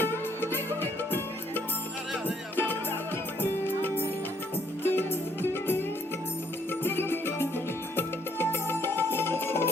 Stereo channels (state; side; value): normal; both; correlation 0.68